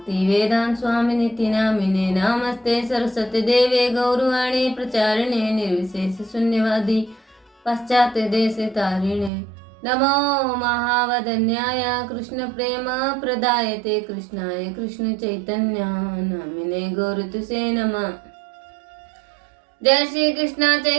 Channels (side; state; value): left; drops out; at 9.3 s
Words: वेदांत स्वामिनिति नामिने। नमस्ते सरस्वती देवे गौरवाणी प्रचारिणे निर्विशेष शून्यवादी पाश्चात्य देश तारिणे। नमो महावदन्याय कृष्ण प्रेम प्रदायते कृष्णाय कृष्ण चैतन्य नामिने गौरतुसे नमः। जय श्री कृष्ण